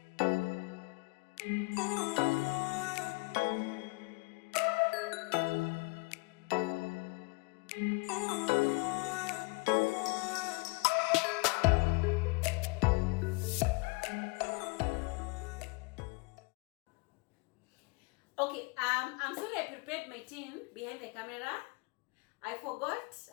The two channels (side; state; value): right; quieter; 28.6 dB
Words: Okay, I'm sorry I prepared my tin behind the camera. I forgot,